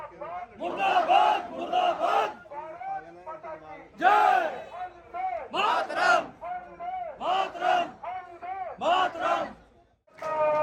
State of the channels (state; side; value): identical; both; correlation 1.00